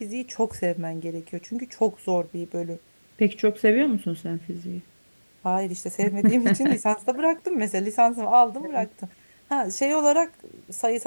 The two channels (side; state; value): both; inverted; correlation -1.00